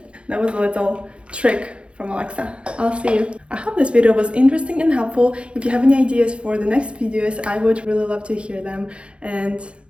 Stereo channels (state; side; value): late; left; 0.058 ms